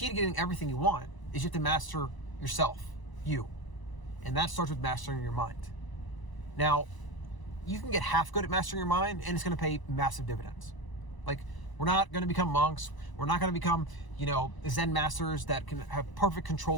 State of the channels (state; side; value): late; right; 1.0 ms